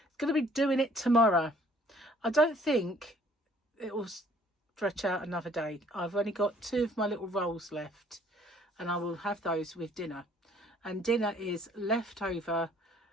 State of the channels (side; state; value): both; normal; correlation 0.59